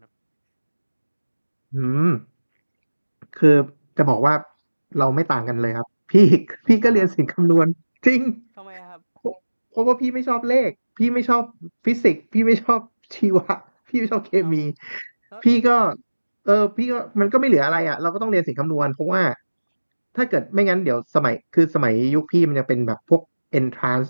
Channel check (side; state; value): both; inverted; correlation -1.00